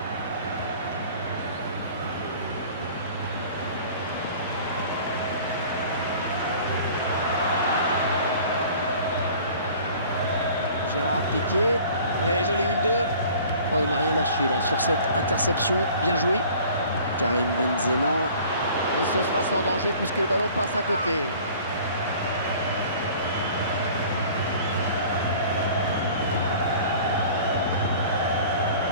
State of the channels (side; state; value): both; inverted; correlation -0.47